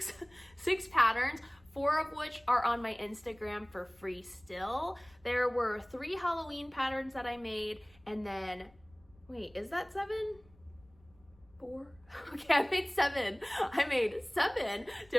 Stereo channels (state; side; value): noise; left; rumble, 28 dB below the sound